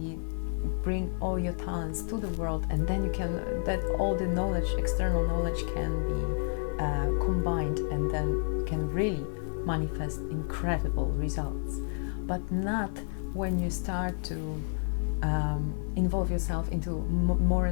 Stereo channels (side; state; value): right; silent; digital silence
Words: bring all your talents to the world, and then that all the knowledge, external knowledge, can be combined, and then you can really manifest incredible results. But not when you start to involve yourself into more